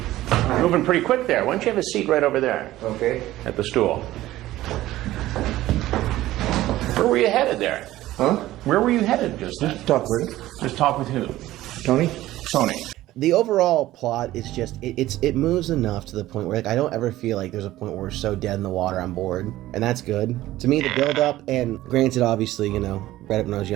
Moving pretty quick there. Why don't you have a seat right over there? Okay. At the stool. Where were you headed there? Huh? Where were you headed just then? Just talk with him. Just talk with who? Tony? Tony. The overall plot is just, it moves enough to the point where, like, I don't ever feel like there's a point where we're so dead in the water I'm bored, and that's good. To me, the build-up, and granted, obviously, read it when I was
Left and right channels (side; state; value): left; quieter; 15.6 dB